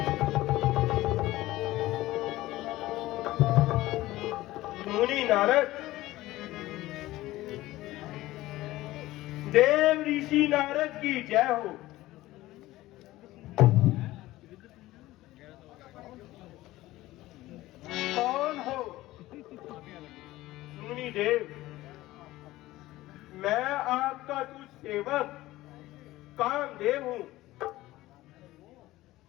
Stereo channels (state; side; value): quieter; right; 17.1 dB